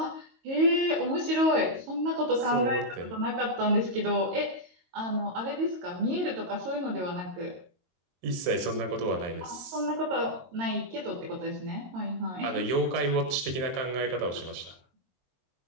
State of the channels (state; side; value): late; left; 22 ms